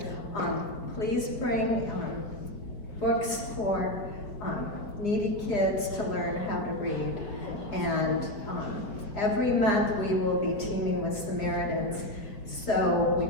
Please bring books for needy kids to learn how to read. And every month we will be teaming with Samaritans, so we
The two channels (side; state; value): right; late; 4.7 ms